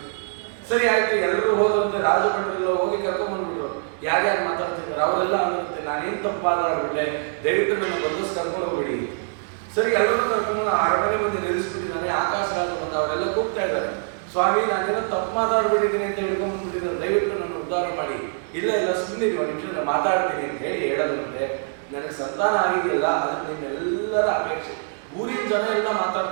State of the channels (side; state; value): left; silent; 63 dB below the other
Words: ಸರಿ ಆಯ್ತು, ಎಲ್ಲರೂ ಹೋದಂತೆ ರಾಜಭಟ್ರೆಲ್ಲ ಹೋಗಿ ಕರ್ಕೊಂಡ್ ಬಂದ್ಬಿಟ್ರು. ಯಾರ್ಯಾರು ಮಾತಾಡ್ತಿದ್ದಾರೆ ಅವರೆಲ್ಲ ಅನ್ನಿರುತ್ತೆ ನಾನೇನು ತಪ್ಪಾಗ್ಬಿಟ್ಟೆ, ದಯವಿಟ್ಟು ನನ್ನ ಬಂದಸ್ ಕರ್ಕೊಂಡು ಹೋಗ್ಬೇಡಿ. ಸರಿ, ಎಲ್ಲರೂ ಕರ್ಕೊಂಡು ಅರಮನೆ ಮುಂದೆ ನಿಲ್ಲಿಸ್ಬಿಟ್ಟಿದ್ದಾನೆ. ಆಕಾಶ ರಾಜ ಬಂದ ಅವರೆಲ್ಲ ಕೂಗ್ತಾ ಇದ್ದಾರೆ, ಸ್ವಾಮಿ ನಾನೇನೋ ತಪ್ಪು ಮಾತಾಡ್ಬಿಟ್ಟಿದ್ದೀನಿ ಅಂತ ಹಿಡ್ಕೊಂಡ್ಬಿಟ್ಟಿದ್ದಾರೆ, ದಯವಿಟ್ಟು ನನ್ನ ಉದ್ಧಾರ ಮಾಡಿ. ಇಲ್ಲ ಇಲ್ಲ ಸುಮ್ಮನೆ ಒಂದು ನಿಮಿಷ ನಾನು ಮಾತಾಡ್ತೀನಿ ಅಂತ ಹೇಳಿ ಹೇಳೋದಂತೆ, ನನಗೆ ಸಂತಾನ ಆಗಿದೆಯಲ್ಲ ಅದಕ್ಕೆ ನಿಮ್ಮೆಲ್ಲರ ಅಪೇಕ್ಷೆ. ಊರಿನ ಜನ ಎಲ್ಲ